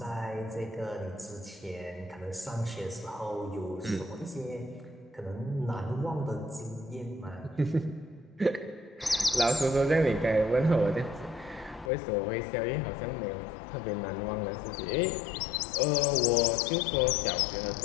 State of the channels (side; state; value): right; drops out; at 11.9 s